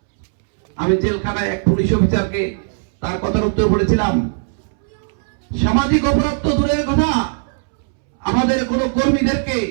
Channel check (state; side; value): silent; left; 67 dB below the other